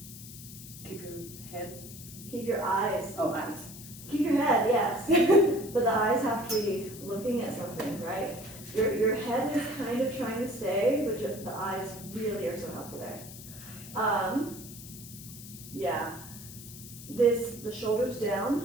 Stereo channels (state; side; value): noise; left; hiss, 14 dB below the sound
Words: Keep your head. Keep your eyes. Oh, eyes. Keep your head, yes. But the eyes have to be looking at something, right? Your head is kind of trying to stay, but the eyes really are so helpful there. Yeah. The shoulders down